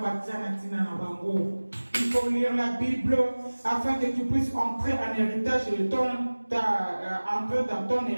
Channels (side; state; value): both; inverted; correlation -1.00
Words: Il faut lire la Bible afin que tu puisses entrer en héritage de entrer dans ton